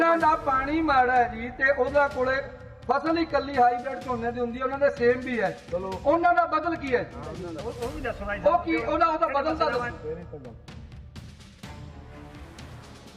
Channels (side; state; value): both; identical; correlation 1.00